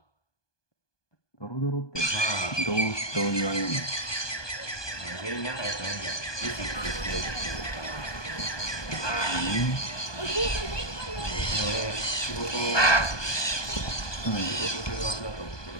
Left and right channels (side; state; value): right; late; 1.2 ms